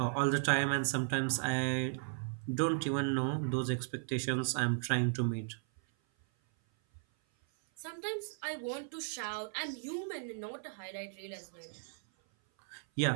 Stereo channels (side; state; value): left; silent; 54 dB below the other